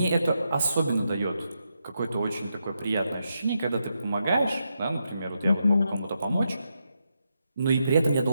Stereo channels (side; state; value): both; inverted; correlation -0.84